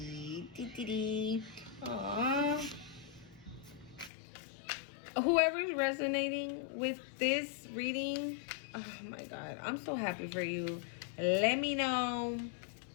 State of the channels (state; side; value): drops out; right; at 4.1 s